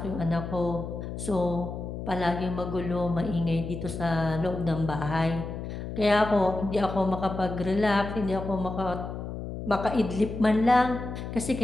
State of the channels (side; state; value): left; noise; hum, 7 dB below the sound